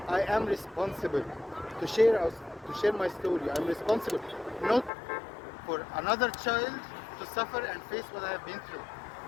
I am responsible to share my story. I'm responsible, not for another child to suffer and face what I have been through.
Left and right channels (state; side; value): drops out; right; at 4.9 s